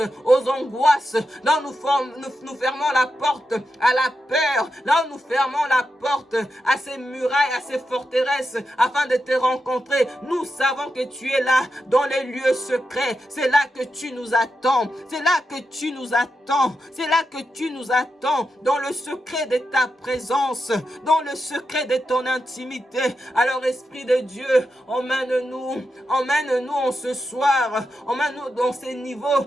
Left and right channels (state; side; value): normal; both; correlation 0.87